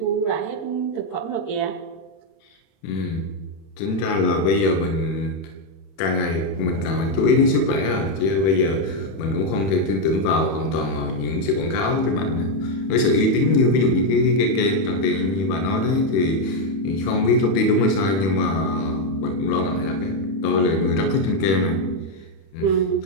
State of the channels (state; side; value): late; right; 31 ms